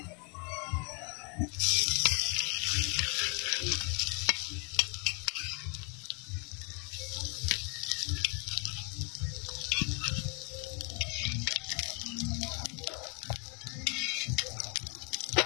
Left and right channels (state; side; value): quieter; right; 34.2 dB